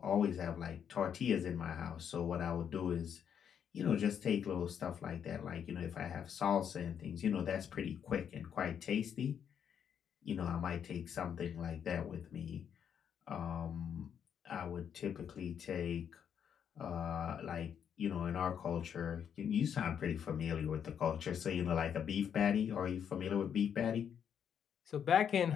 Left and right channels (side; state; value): right; quieter; 8.2 dB